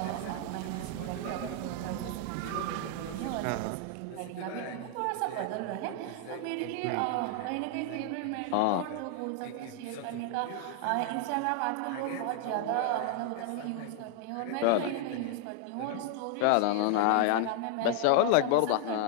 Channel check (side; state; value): both; different; correlation 0.00